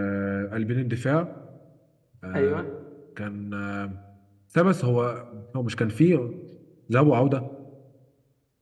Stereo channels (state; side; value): identical; both; correlation 1.00